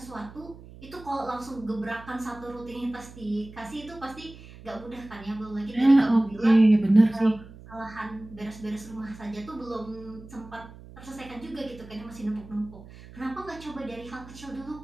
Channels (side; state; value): right; noise; hum, 18 dB below the sound